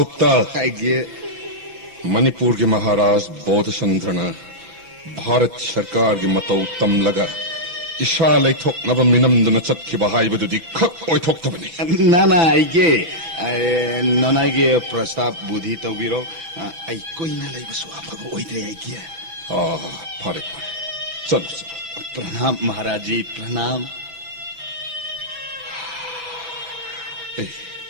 आइगे मणिपुर के महाराज बोधचंद्रन भारत सरकार की मतौ तम लगा इशा लेथोकनब मिनमदन चतखिबा हाइबदुदि खक ओइथोक्तबनि नाना आइगे नानागे प्रस्ताव बुद्धि तौबिरो आई कोइना लेबसु आफब ओइद्रे आइगे फारे चलो प्रणाम महाराज जी प्रणाम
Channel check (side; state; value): left; late; 6.3 ms